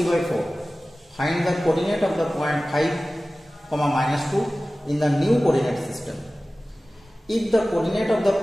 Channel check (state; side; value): normal; both; correlation 0.97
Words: Find the coordinate of the point 5, -2 in the new coordinate system. If the coordinate of the